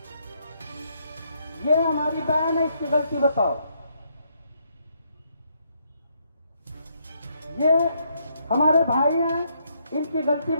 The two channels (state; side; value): inverted; both; correlation -0.74